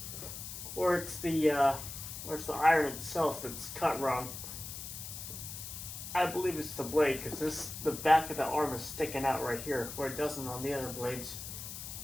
or it's the iron itself that's cut wrong. I believe it's the blade because the back of the arm is sticking out right here where it doesn't on the other blades.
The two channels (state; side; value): noise; left; hiss, 9 dB below the sound